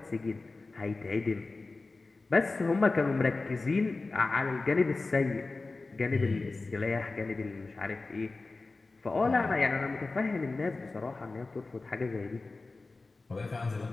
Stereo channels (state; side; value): quieter; right; 3.6 dB